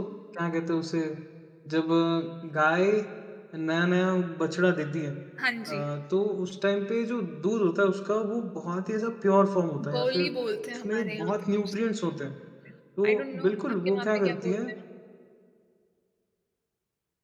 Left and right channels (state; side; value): identical; both; correlation 1.00